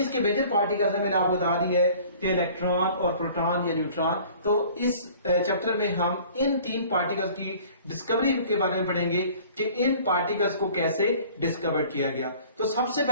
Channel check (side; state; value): both; inverted; correlation -0.49